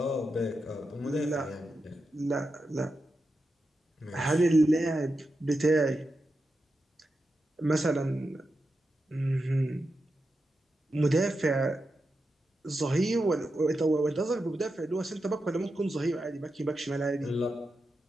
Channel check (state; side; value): normal; both; correlation 0.89